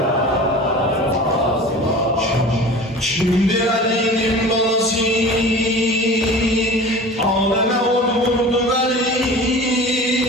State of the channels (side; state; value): both; normal; correlation 0.38